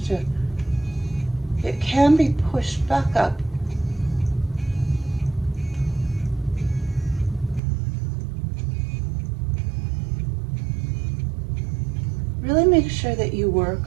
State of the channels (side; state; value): left; drops out; at 7.6 s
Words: it can be pushed back up. Really make sure that you work